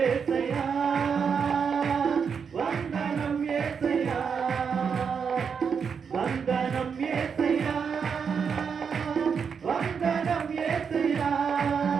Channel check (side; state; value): left; quieter; 6.4 dB